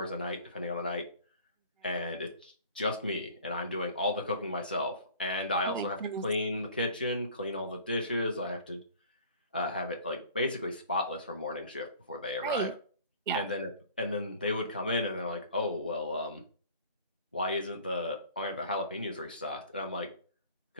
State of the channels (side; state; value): both; inverted; correlation -0.47